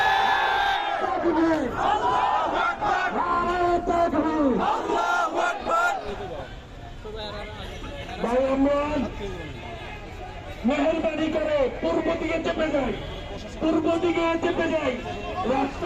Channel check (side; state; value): both; identical; correlation 1.00